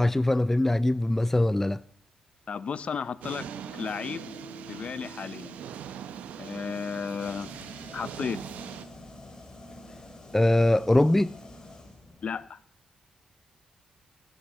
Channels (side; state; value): both; normal; correlation 0.96